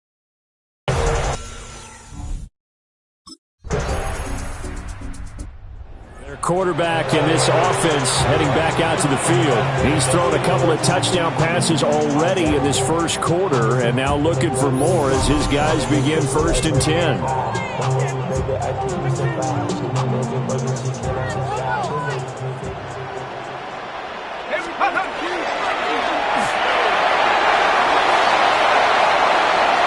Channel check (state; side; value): identical; both; correlation 1.00